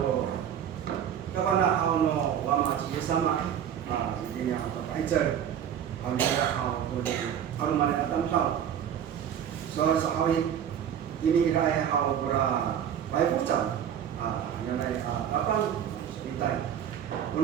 kawana hal no wama ci sama ini hal Pfizer hal ni hal hal mana tam tahu. So sahawi ini rai hal pura baik pucat yang naik kapan bitai.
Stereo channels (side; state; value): left; quieter; 9.2 dB